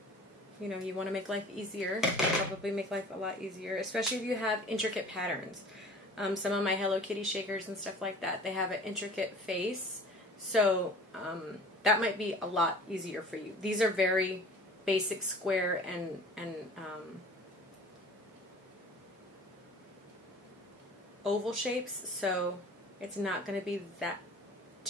you want to make life easier. Probably make life a lot easier, especially if you have intricate patterns. Some of my Hello Kitty shakers and stuff like that, they have an intricate face, so that might be a lot easier for you. These are very basic square and oval shapes, so it's not going to be that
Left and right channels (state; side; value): normal; both; correlation 0.44